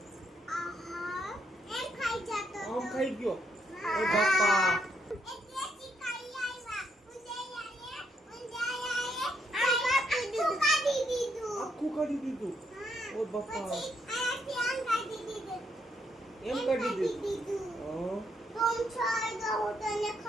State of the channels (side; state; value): both; normal; correlation 0.75